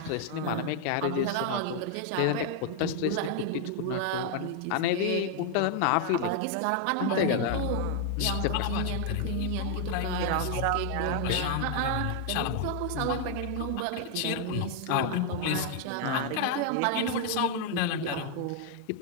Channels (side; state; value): both; different; correlation 0.00